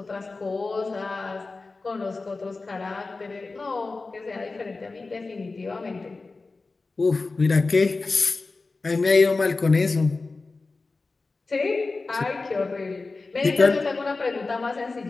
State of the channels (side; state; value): right; quieter; 3.7 dB